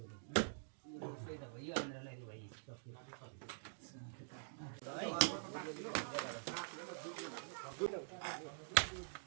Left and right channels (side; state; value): left; silent; digital silence